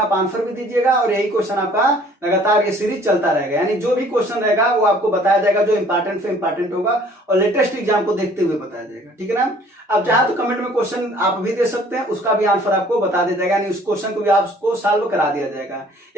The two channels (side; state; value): both; normal; correlation 0.55